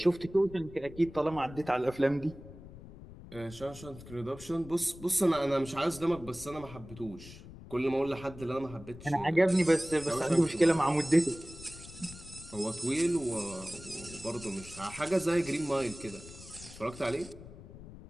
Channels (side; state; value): left; noise; rumble, 16 dB below the sound